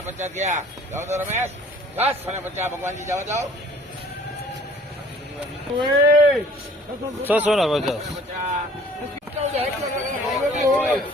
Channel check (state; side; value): normal; both; correlation 0.53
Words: ગયા. જાઓ તો રમેશ. 650 ભગવાનજી જાઓ જાઓ. 650.